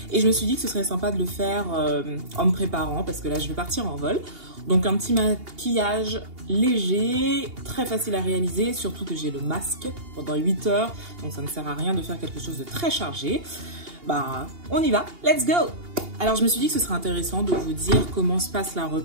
Et je me suis dit que ce serait sympa de le faire en me préparant parce que là, je vais partir en vol. Donc un petit maquillage léger, très facile à réaliser, surtout que j'ai le masque pendant 8 heures. Donc ça ne sert à rien de faire quelque chose de très chargé. Bah, on y va, let's go! Alors je me suis dit que ce serait intéressant de vous dire comment se passe la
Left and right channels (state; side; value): late; left; 2.8 ms